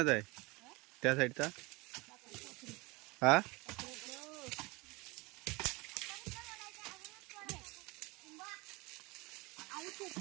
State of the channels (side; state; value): left; quieter; 24.7 dB